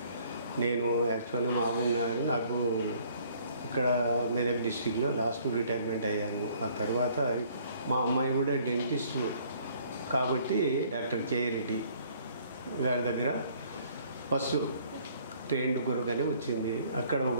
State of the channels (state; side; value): inverted; both; correlation -0.60